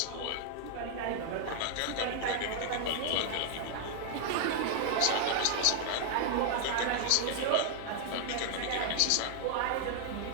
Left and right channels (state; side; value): different; both; correlation 0.00